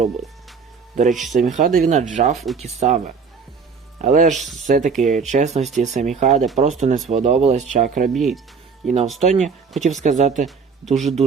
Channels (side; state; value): left; quieter; 5.5 dB